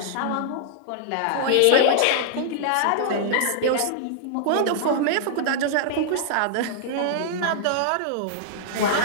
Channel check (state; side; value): different; both; correlation -0.01